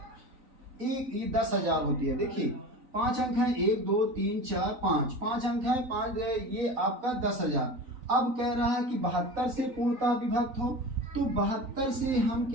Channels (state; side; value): late; left; 3.9 ms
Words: एक, ये 10,000 होती है। देखिए 5 अंक है, 1 2 3 4 5, 5 अंक है, 5 ये आपका 10,000। अब कह रहा है कि 72 से पूर्णतः विभक्त हो, तो 72 से हम